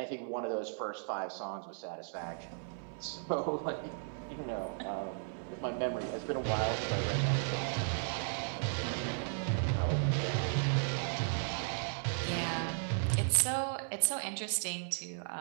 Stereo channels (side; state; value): left; silent; 54 dB below the other